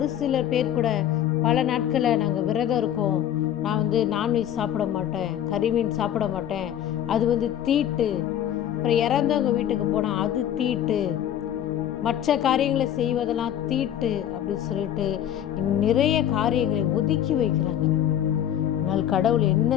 சில பேர் கூட பல நாட்களை நாங்கள் விரதம் இருக்கோம், நான் நான்வெஜ் சாப்பிட மாட்டேன், கறிமீன் சாப்பிட மாட்டேன், அது தீட்டு. அப்புறம் இறந்தவங்க வீட்டுக்கு போனால் அது தீட்டு, மற்ற காரியங்களை செய்வதெல்லாம் தீட்டு அப்படின்னு சொல்லிட்டு நிறைய காரியங்களை ஒதுக்கி வைக்கிறாங்க. ஆனால் கடவுள் என்ன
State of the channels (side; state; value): right; quieter; 10.7 dB